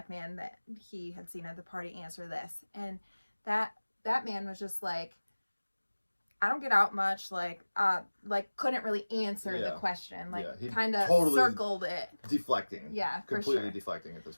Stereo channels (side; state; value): both; inverted; correlation -1.00